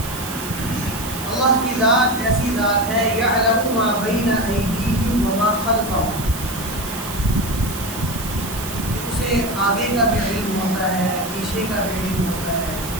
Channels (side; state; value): right; noise; hiss, 10 dB below the sound